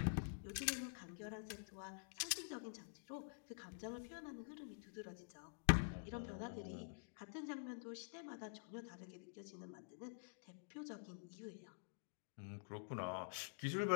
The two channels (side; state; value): right; silent; digital silence